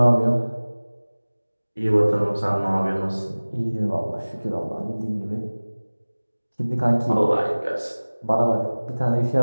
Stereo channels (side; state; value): both; inverted; correlation -1.00